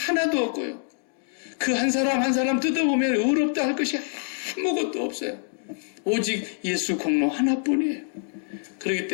없고요. 그 한 사람 한 사람 뜯어보면 의롭다 할 것이 아무것도 없어요. 오직 예수 공로 하나뿐이에요. 그렇기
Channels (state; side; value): silent; right; digital silence